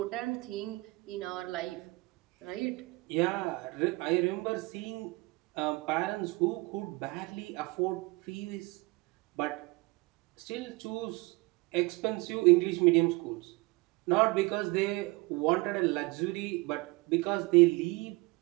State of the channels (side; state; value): left; quieter; 24.0 dB